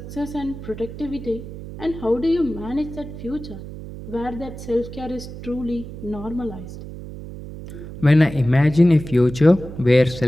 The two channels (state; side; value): noise; right; hum, 12 dB below the sound